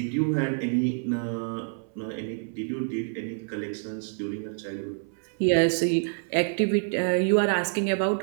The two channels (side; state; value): left; silent; 59 dB below the other